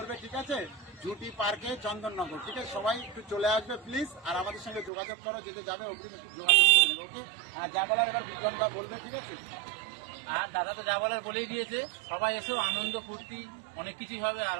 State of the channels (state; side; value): drops out; left; at 4.9 s